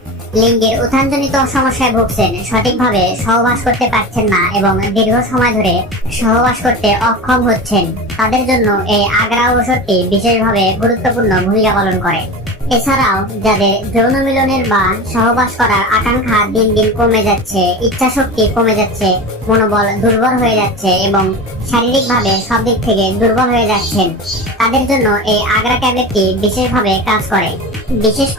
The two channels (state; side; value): normal; both; correlation 0.29